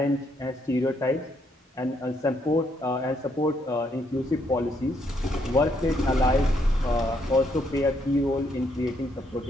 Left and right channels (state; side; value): normal; both; correlation 0.73